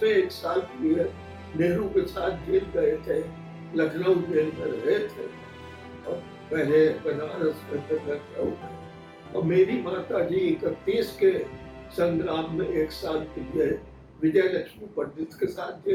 में 1 साल के लिए नेहरू के साथ जेल गए थे, लखनऊ जेल में रहे थे, और पहले बनारस में फिर लखनऊ में। और मेरी माता जी 31 के संग्राम में 1 साल के लिए विजय लक्ष्मी पंडित के साथ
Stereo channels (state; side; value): identical; both; correlation 1.00